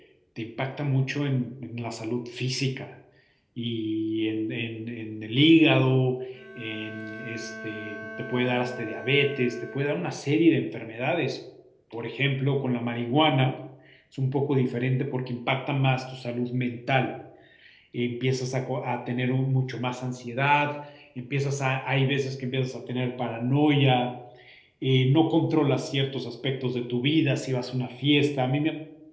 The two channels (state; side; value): identical; both; correlation 1.00